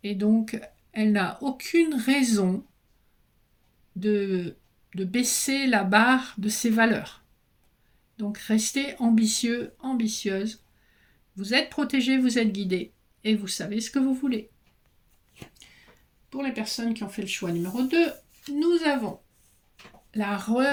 Et donc, elle n'a aucune raison de baisser la barre de ses valeurs. Donc, restez ambitieux, ambitieuse. Vous êtes protégé, vous êtes guidé et vous savez ce que vous voulez. Pour les personnes qui ont fait le choix numéro 2, nous avons la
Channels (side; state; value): both; identical; correlation 1.00